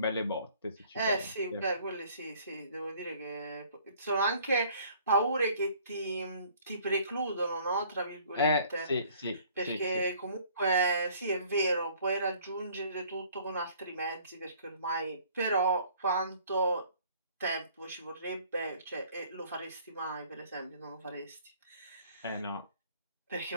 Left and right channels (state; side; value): inverted; both; correlation -0.56